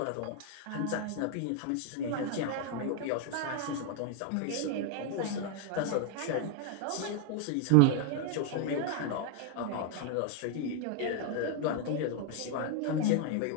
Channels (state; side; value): different; both; correlation 0.00